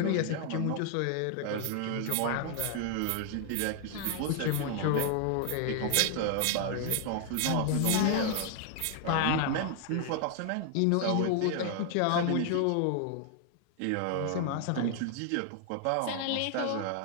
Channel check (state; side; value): different; both; correlation 0.00